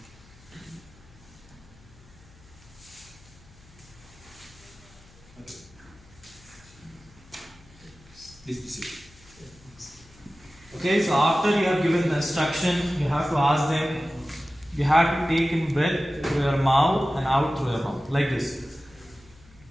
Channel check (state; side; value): noise; left; hum, 25 dB below the sound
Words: this. Okay, so after you have given the instruction, you have to ask them, you have to take in breath through your mouth and out through your mouth, like this.